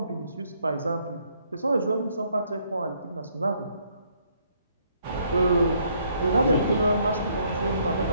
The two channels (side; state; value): both; inverted; correlation -0.68